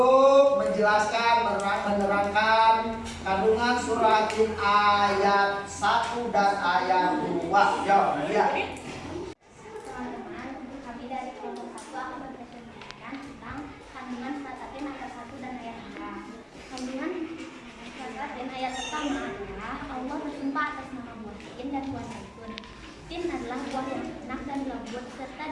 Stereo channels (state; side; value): identical; both; correlation 1.00